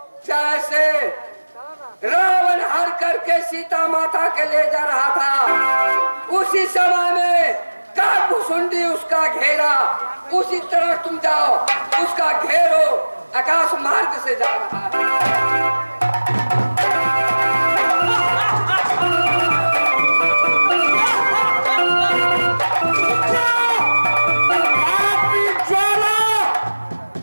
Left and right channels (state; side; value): inverted; both; correlation -1.00